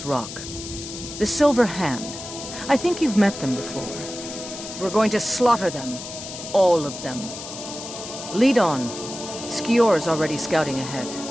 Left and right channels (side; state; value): left; noise; hiss, 10 dB below the sound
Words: Rock. The Silver Hand. I think you've met them before. We're going to slaughter them. All of them. Lead on. Skior's already scouting ahead.